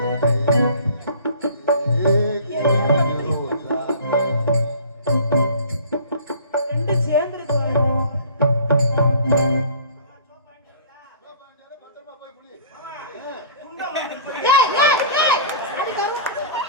ரெண்டு சேர்ந்துருச்சு பத்திரமா போய் புளி.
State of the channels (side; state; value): both; inverted; correlation -0.47